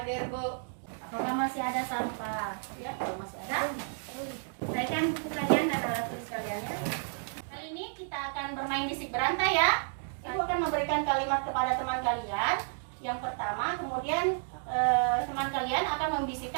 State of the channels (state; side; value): silent; left; digital silence